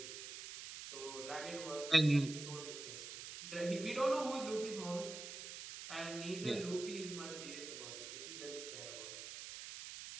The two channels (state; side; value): noise; right; hiss, 9 dB below the sound